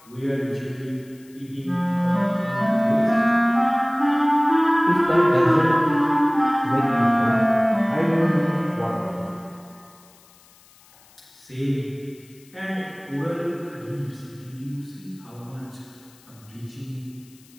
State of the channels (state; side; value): noise; left; hiss, 27 dB below the sound